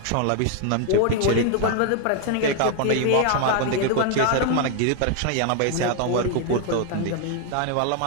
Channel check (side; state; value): both; different; correlation 0.00